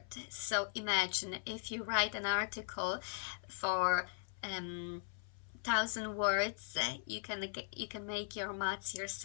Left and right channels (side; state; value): right; silent; 52 dB below the other